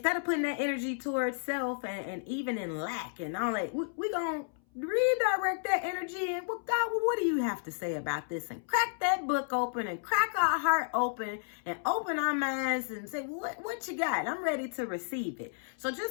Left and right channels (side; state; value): right; silent; 56 dB below the other